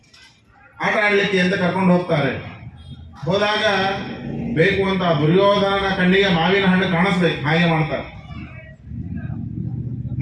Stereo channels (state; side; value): identical; both; correlation 1.00